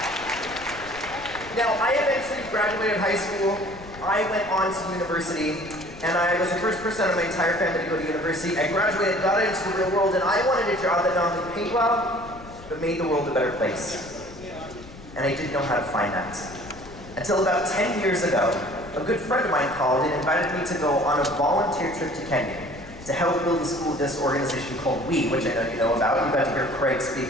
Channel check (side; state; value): left; noise; rumble, 18 dB below the sound